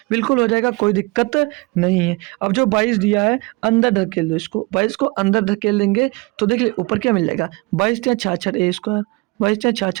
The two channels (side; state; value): left; quieter; 25.2 dB